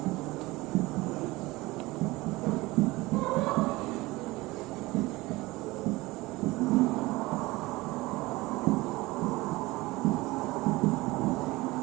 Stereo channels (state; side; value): quieter; left; 20.7 dB